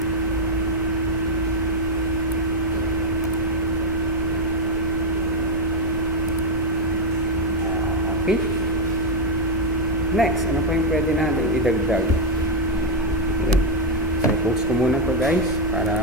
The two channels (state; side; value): normal; both; correlation 0.02